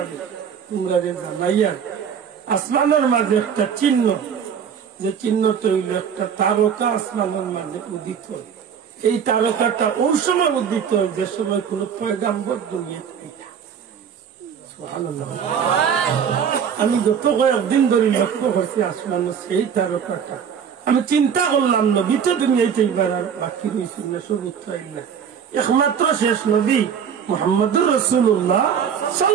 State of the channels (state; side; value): quieter; left; 7.6 dB